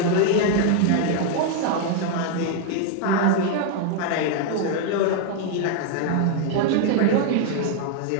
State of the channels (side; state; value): both; different; correlation 0.00